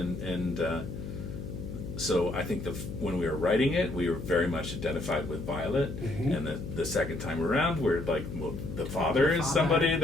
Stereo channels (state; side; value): noise; left; hum, 8 dB below the sound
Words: so I think when we were writing it, we were very much identified with Violet, and the second time around, we're like, well, the father is somebody